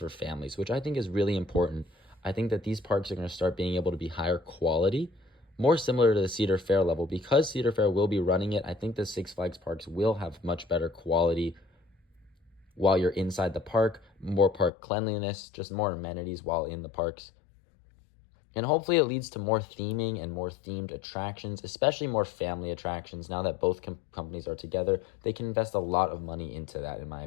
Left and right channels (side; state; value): right; drops out; at 14.7 s